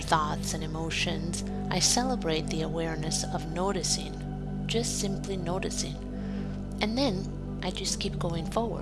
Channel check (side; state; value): both; identical; correlation 1.00